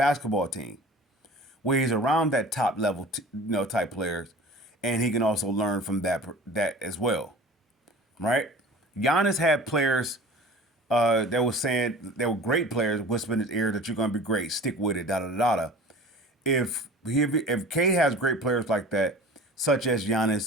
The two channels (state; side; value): normal; both; correlation 0.41